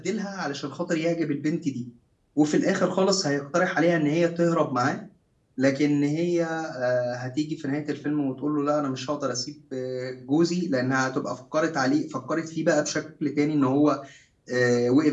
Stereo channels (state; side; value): identical; both; correlation 1.00